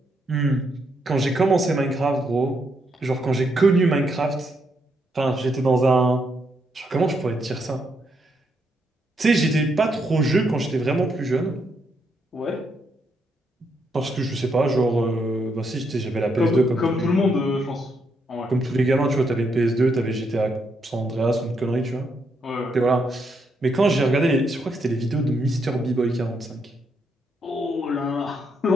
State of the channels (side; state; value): both; normal; correlation 0.78